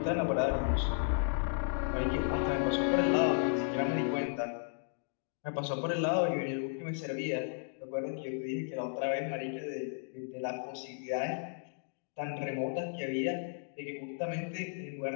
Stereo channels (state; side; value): silent; right; digital silence